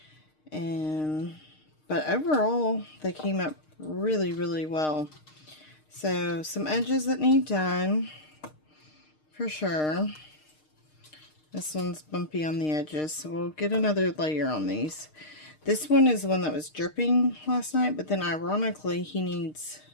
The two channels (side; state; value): right; late; 6.5 ms